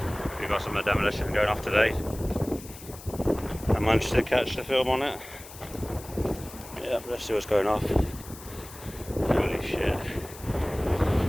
we've got some demolition going off today. I managed to catch the film on it. Yeah, let's see what's going off. Holy shit.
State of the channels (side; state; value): left; noise; hiss, 17 dB below the sound